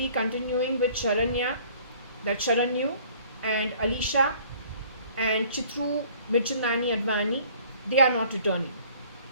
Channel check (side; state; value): both; inverted; correlation -0.54